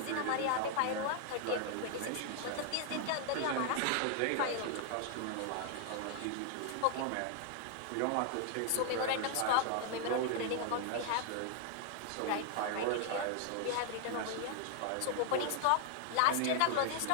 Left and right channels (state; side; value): different; both; correlation 0.00